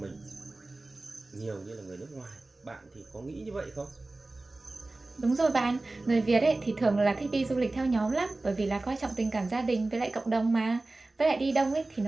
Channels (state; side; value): quieter; left; 3.1 dB